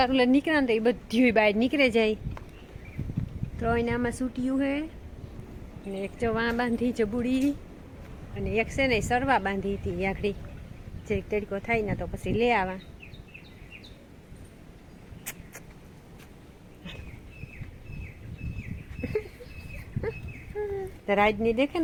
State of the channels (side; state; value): both; identical; correlation 1.00